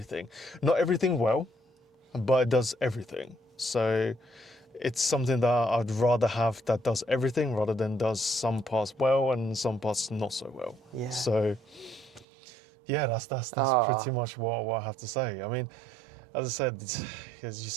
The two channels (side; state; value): left; drops out; at 12.2 s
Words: Not everything well, but it does everything. So it's something that I'd rather have that does everything rather than does some parts well and some parts not so well. Yeah. So yeah, that's pretty much what I have to say. I mean, as I said, as you